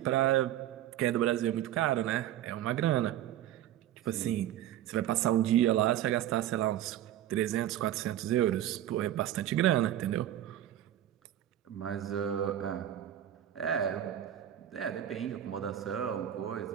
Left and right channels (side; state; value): left; quieter; 12.1 dB